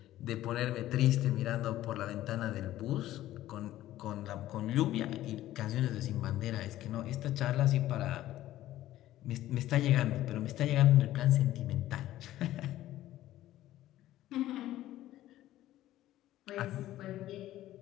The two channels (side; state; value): right; quieter; 14.3 dB